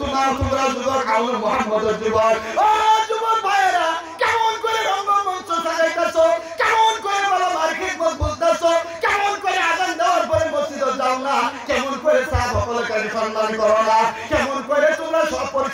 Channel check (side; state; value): both; identical; correlation 1.00